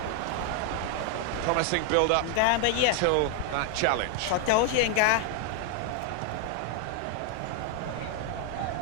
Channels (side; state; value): both; different; correlation 0.00